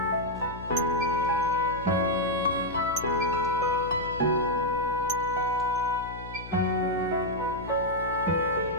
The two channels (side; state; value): left; noise; hum, 13 dB below the sound